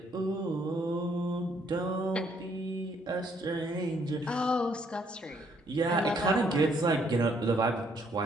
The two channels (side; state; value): both; normal; correlation 0.68